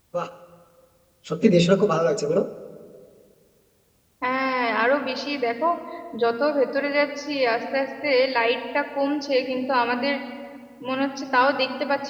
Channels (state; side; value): identical; both; correlation 1.00